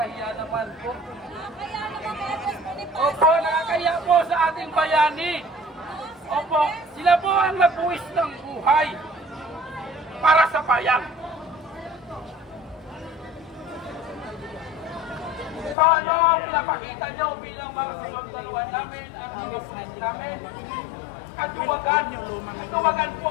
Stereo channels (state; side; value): drops out; right; at 15.8 s